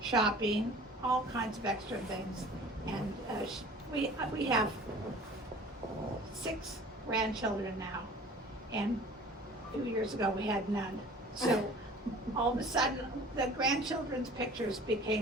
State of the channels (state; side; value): normal; both; correlation 0.46